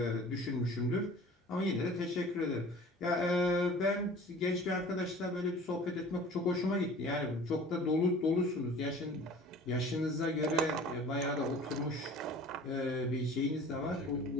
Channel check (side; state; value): both; normal; correlation 0.45